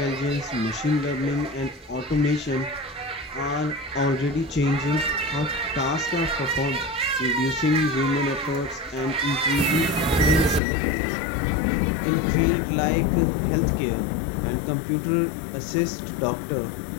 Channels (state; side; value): drops out; right; at 10.6 s